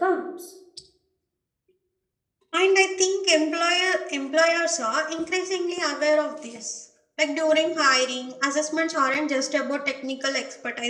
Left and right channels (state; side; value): identical; both; correlation 1.00